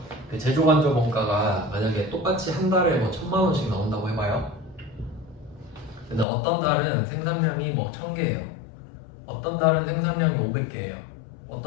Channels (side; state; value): right; drops out; at 6.2 s